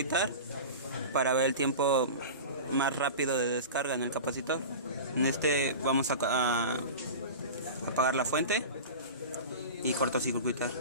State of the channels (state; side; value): inverted; both; correlation -0.31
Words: para ver el tiempo más rápido de descarga en el capacitor. En este vamos a apagar la fuente y cortocircuitar.